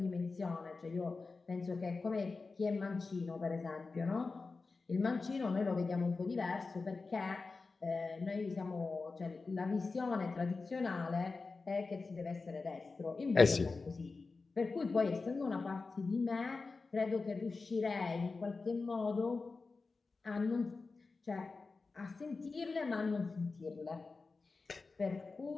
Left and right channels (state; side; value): quieter; right; 4.1 dB